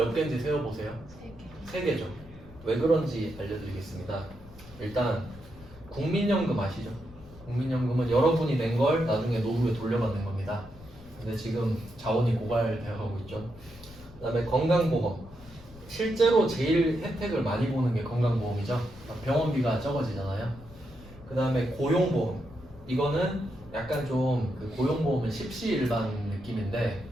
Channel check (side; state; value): left; noise; rumble, 20 dB below the sound